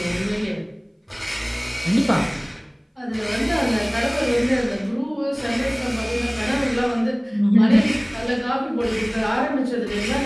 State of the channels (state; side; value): identical; both; correlation 1.00